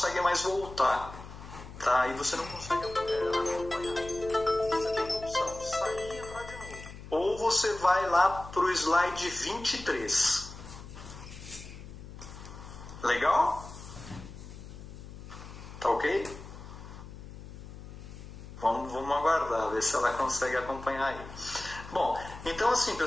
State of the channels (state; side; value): noise; left; hum, 14 dB below the sound